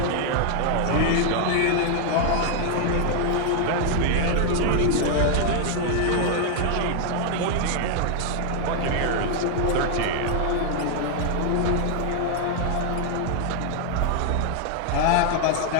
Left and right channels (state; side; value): different; both; correlation 0.00